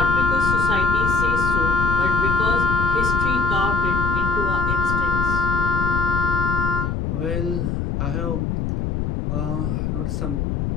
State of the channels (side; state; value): left; noise; rumble, 1 dB below the sound